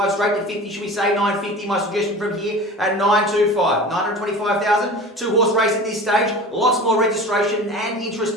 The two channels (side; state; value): both; normal; correlation 0.36